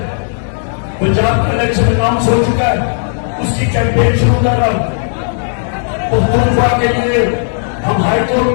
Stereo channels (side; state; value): right; silent; digital silence